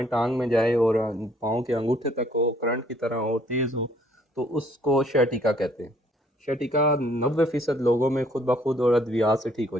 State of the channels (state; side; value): normal; both; correlation 0.63